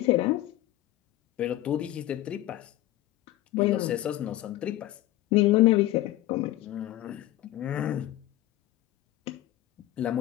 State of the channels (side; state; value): right; quieter; 15.1 dB